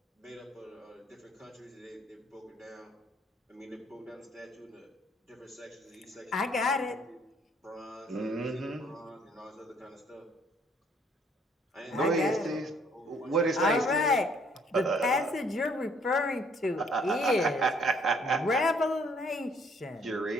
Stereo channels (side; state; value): both; normal; correlation 0.63